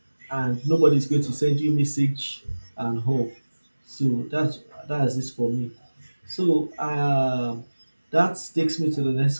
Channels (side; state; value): both; inverted; correlation -1.00